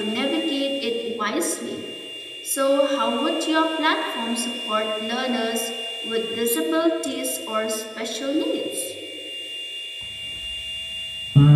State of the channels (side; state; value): both; identical; correlation 1.00